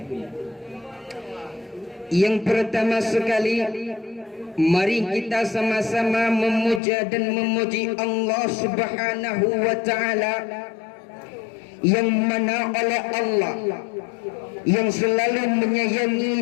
Yang pertama sekali, mari kita sama-sama memuja dan memuji Allah Subhanahu wa ta'ala, yang mana oleh Allah yang selalu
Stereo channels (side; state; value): right; drops out; at 6.8 s